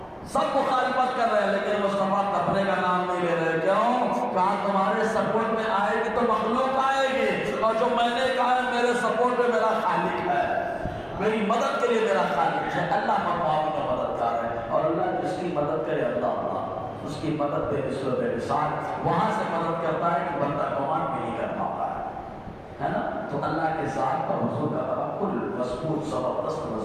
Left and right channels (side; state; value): both; identical; correlation 1.00